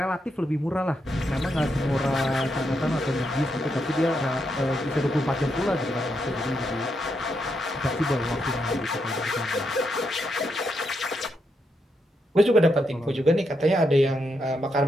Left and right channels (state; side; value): normal; both; correlation 0.81